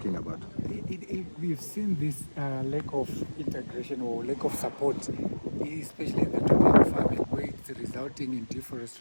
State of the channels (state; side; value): inverted; both; correlation -1.00